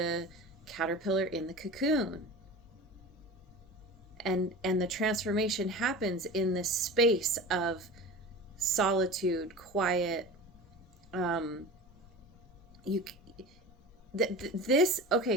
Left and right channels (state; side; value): normal; both; correlation 0.34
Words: caterpillar in the cocoon. And the transformation happens in this space of solitude, quiet. You this